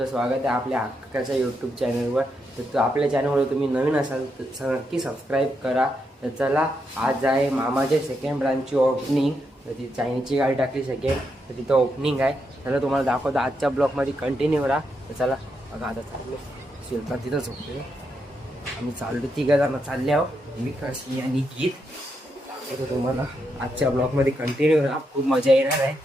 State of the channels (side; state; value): both; normal; correlation 0.82